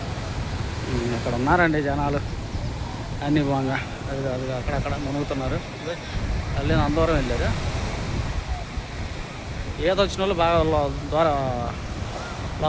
ఇక్కడ ఉన్నారండి జనాలు అన్నీ బాగా, అది అక్కడక్కడ మునుగుతున్నారు. అల్లి అందరం వెళ్ళారు. ఏదొచ్చిన వాళ్ళు బాగా ద్వారా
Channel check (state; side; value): identical; both; correlation 1.00